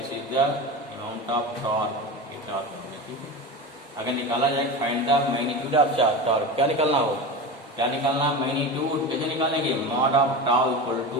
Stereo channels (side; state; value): both; normal; correlation 0.26